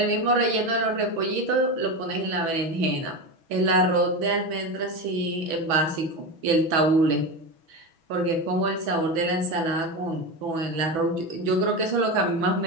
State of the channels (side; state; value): left; late; 6.1 ms